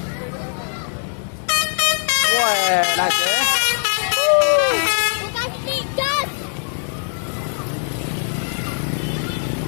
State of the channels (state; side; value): silent; right; 65 dB below the other